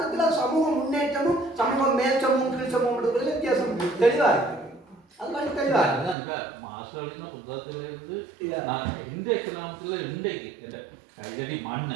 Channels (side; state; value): left; drops out; at 6.2 s